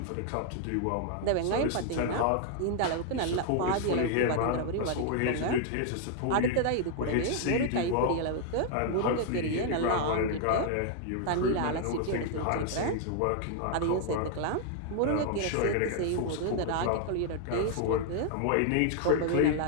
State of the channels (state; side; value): different; both; correlation 0.00